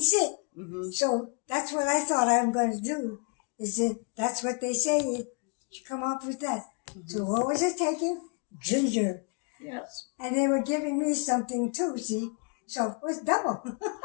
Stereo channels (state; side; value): quieter; right; 37.3 dB